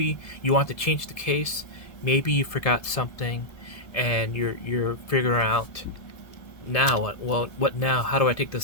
you want to change the case, maybe you forgot something, and you're figuring out now what now? How do I take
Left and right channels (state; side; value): late; right; 1.7 ms